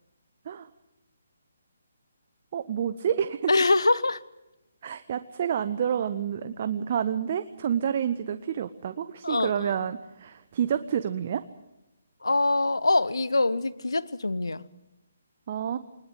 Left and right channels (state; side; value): inverted; both; correlation -0.80